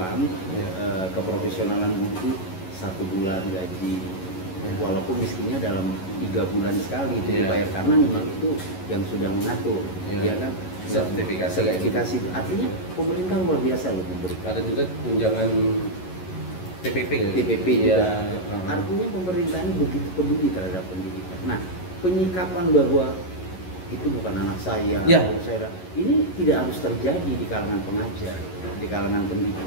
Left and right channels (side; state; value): right; late; 11 ms